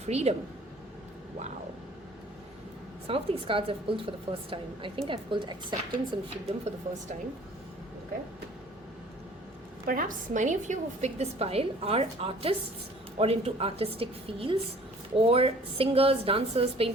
Freedom. Wow. Some of these cards I've pulled for the first time. I think I've pulled acceptance and freedom for the first time. Okay. Perhaps many of you who've picked this pile are artists or into artistic fields, or singers, dancers,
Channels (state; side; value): normal; both; correlation 0.52